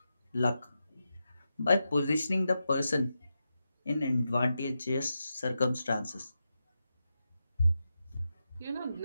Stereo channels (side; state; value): both; inverted; correlation -0.89